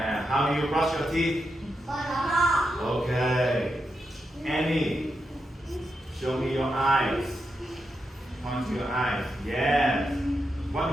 how do you brush your teeth? Okay. Annie, show me your eyes. Point to your eyes. Yes. What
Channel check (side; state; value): both; normal; correlation 0.86